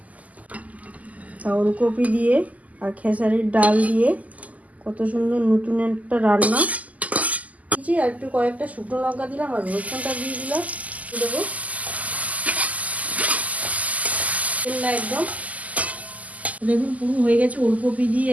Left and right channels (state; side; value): late; left; 0.075 ms